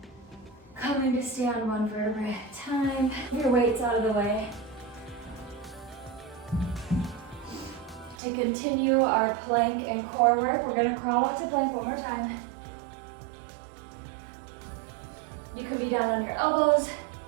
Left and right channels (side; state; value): left; drops out; at 8.2 s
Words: Coming to stay on one vertebra at a time. Your weight's out of the way. To continue our plank and core work, we're gonna crawl out to plank one more time. You could be down on your elbows,